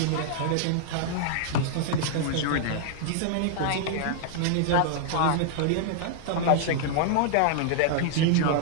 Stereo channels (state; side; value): different; both; correlation -0.01